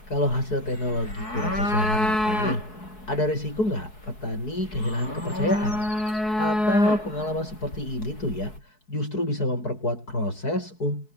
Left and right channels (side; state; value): right; late; 4.7 ms